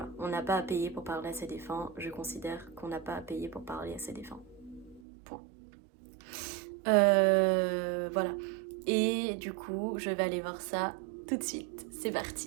on n'a pas à payer pour parler à ses défunts. Je considère qu'on n'a pas à payer pour parler à ses défunts. Point. Voilà. Et du coup, je vais aller voir ça tout de suite. C'est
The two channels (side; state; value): left; drops out; at 5.0 s